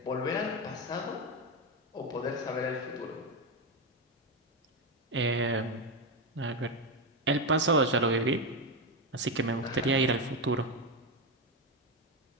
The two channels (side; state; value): both; normal; correlation 0.10